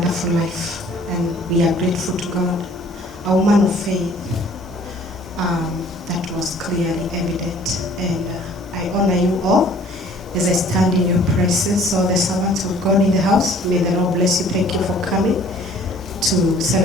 life, and we are grateful to God. A woman of faith, that was clearly evident, and I honor you all as I stand in your presence. All the servants of God in the house, may the Lord bless you. Thank you for coming to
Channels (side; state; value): both; normal; correlation 0.54